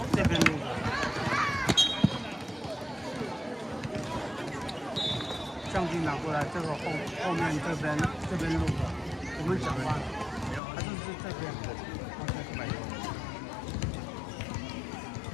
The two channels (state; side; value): drops out; right; at 10.6 s